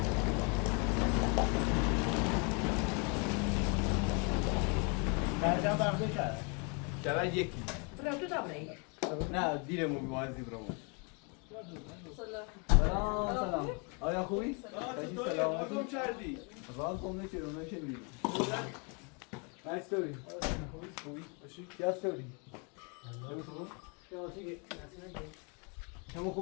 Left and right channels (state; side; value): quieter; right; 34.4 dB